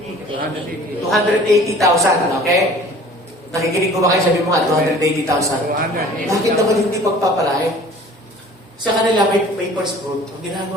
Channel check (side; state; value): both; normal; correlation 0.47